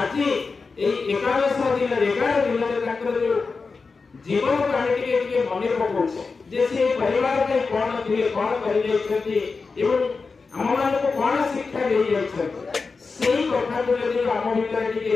ए 11 दिन रे ताकर जो जीवन काहे टिके मने पकोछ जे से परिवार के कोन थिले कोन करी जाइछथि एवं हम मान को कोन शिक्षा दे जाइछथि सेही कथा को यदि हम भीतर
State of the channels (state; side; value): quieter; right; 4.5 dB